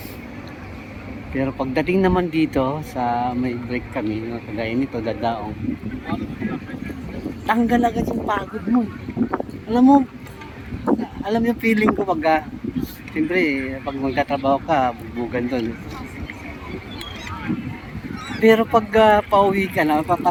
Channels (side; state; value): both; identical; correlation 1.00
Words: Pero pagdating naman dito sa may break kami, no, kagaya nito dadaong, tanggal agad yung pagod mo. Alam yung feeling ko pag siyempre pag magtatrabaho ka, bugbugan doon. Pero pag pauwi ka na,